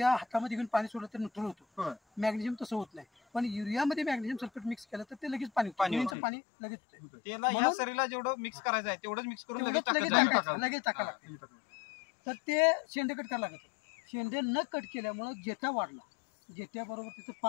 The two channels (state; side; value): drops out; right; at 6.2 s